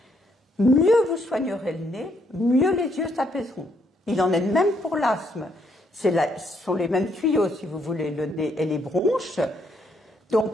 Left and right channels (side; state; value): both; normal; correlation 0.72